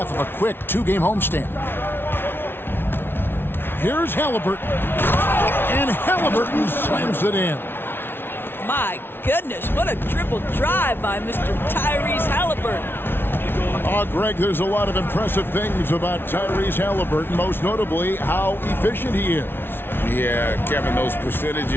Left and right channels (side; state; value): right; late; 0.11 ms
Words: of a quick 2-game homestand. Here's Halliburton. And Halliburton slams it in. My goodness, what a dribble drive by Mr. Tyrese Halliburton. Oh, Greg, there's a lot of impressive things about Tyrese Halliburton, most notably how efficient he is. Yeah, Kevin, those